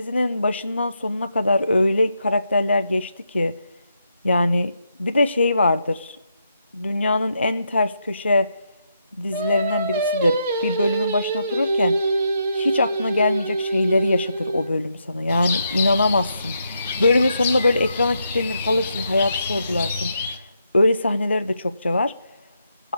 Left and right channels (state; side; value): inverted; both; correlation -0.81